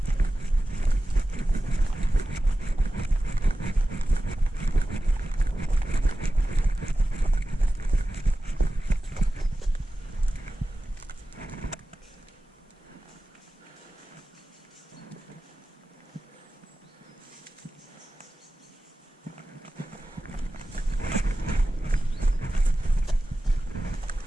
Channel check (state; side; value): normal; both; correlation 0.95